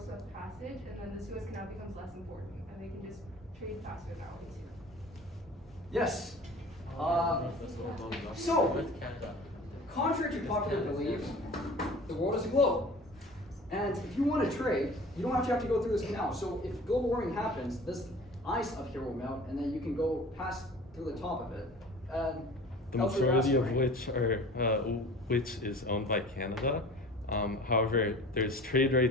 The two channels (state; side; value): normal; both; correlation 0.43